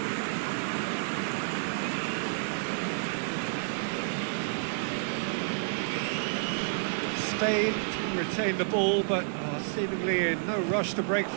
Spain retain the ball, but are seemingly in no rush to break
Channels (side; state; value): left; silent; digital silence